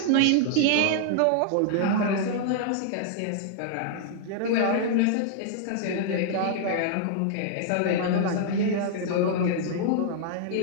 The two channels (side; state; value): both; different; correlation -0.01